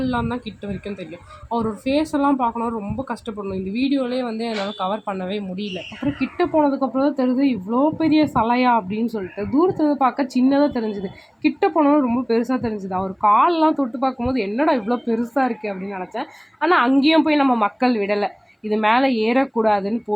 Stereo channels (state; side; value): identical; both; correlation 1.00